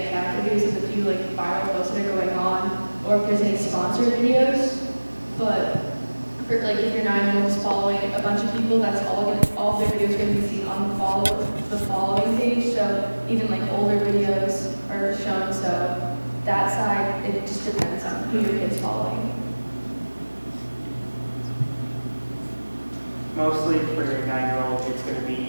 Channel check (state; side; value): inverted; both; correlation -1.00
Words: cat videos with a few like viral posts that are going on, or if there's any sponsored videos. But for, like if your 9-year-old is following a bunch of people, that's all their videos are going to be seen on the following page. So even like older videos are shown. So that side, it just depends on who your kid's following. Mostly for your 9-year-old, it's going to